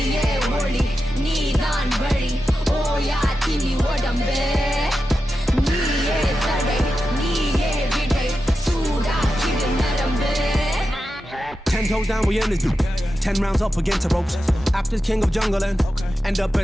ஒளி நீதான் வழி ஓயா தின்னி உடம்பு நீயே தடை நீயே விடை சூடாக்கிடு நரம்பு 10 toes down, we in this dude. 10 rounds up against the ropes. After king of jungle and end up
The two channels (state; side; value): normal; both; correlation 0.91